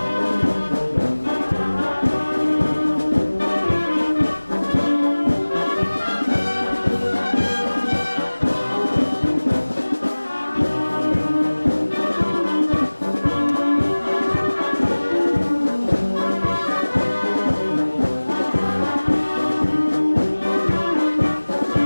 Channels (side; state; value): both; inverted; correlation -1.00